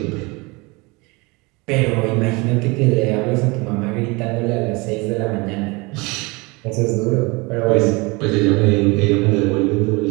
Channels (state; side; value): quieter; left; 26.1 dB